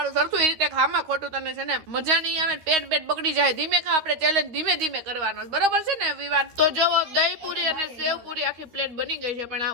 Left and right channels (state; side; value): late; left; 13 ms